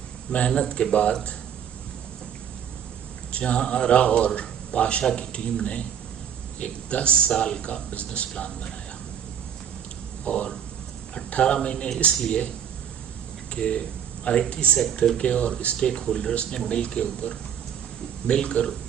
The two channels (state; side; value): quieter; left; 8.6 dB